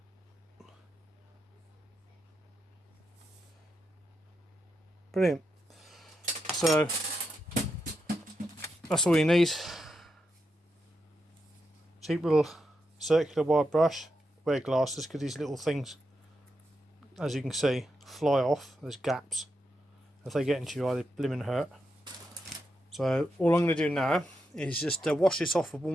Brilliant. So that's all you need. Cheap little circular wire brush. Wear glasses because these little things, as you can see, fly off. There's gaps. If they get into your eye, they blimmin' hurt. So all I'm going to do now is just wash this off with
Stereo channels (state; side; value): normal; both; correlation 0.85